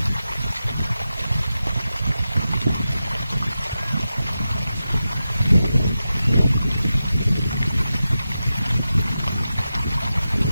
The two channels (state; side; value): inverted; both; correlation -0.92